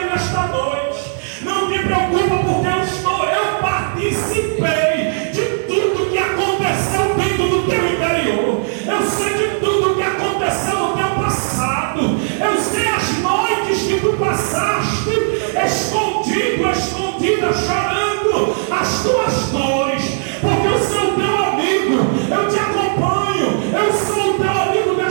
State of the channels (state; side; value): silent; left; digital silence